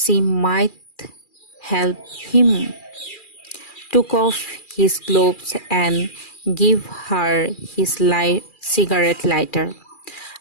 she might help him took off his gloves and give her his cigarette lighter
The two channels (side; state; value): right; late; 2.4 ms